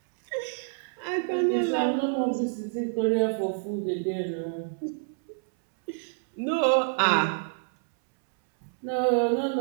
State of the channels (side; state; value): left; silent; 60 dB below the other